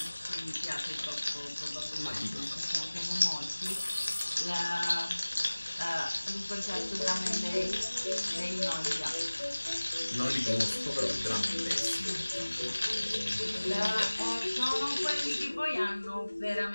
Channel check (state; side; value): inverted; both; correlation -1.00